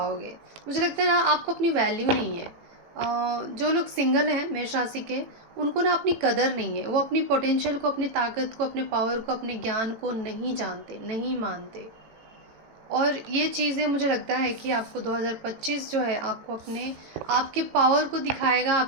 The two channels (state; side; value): late; left; 18 ms